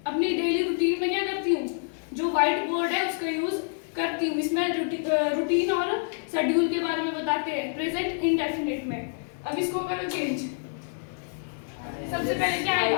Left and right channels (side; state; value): right; silent; digital silence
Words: अपनी डेली रूटीन में क्या करती हूँ? जो व्हाइट बोर्ड है उसका यूज करती हूँ। इसमें रूटीन और शेड्यूल के बारे में बताते हैं प्रेजेंट इंडेफिनिट में। अब इसको करो चेंज। सबसे पहले क्या